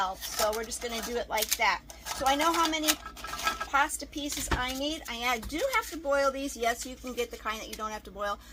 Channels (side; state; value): both; identical; correlation 1.00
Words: so we're just going to do it like that. So I know how many pasta pieces I need. I do have to boil these. Yes, you can get the kind that you don't have to boil,